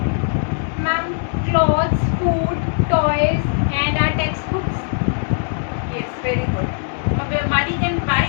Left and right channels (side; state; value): right; silent; digital silence